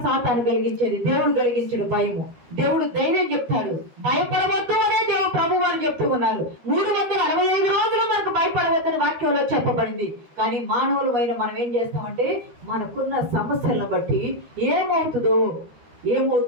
సాతాను కలిగించేది, దేవుడు కలిగించాడు భయము. దేవుడు ధైర్యం చెప్తాడు, భయపడవద్దు అనే దేవుడు ప్రభు వారు చెప్తూ ఉన్నారు. 365 రోజులు మనకు భయపడవద్దని వాక్యంలో చెప్పబడింది. కానీ మానవులమైన మనం ఏం చేస్తామంటే, మనకున్న సమస్యలను బట్టి ఏమవుతుందో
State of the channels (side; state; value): left; late; 13 ms